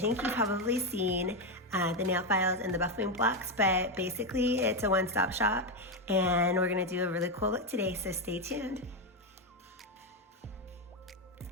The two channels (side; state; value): both; normal; correlation 0.07